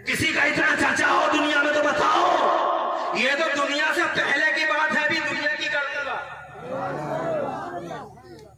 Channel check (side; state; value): both; identical; correlation 1.00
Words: किसी का इतना चर्चा हो दुनिया में तो बताओ। ये तो दुनिया से पहले की बात है, अभी दुनिया की कर दूंगा।